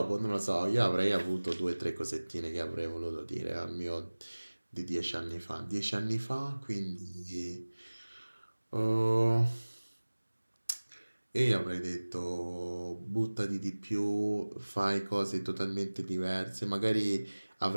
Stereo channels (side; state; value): both; inverted; correlation -1.00